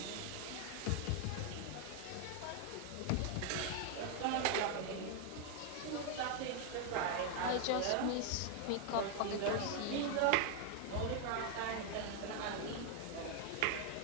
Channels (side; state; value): both; different; correlation 0.01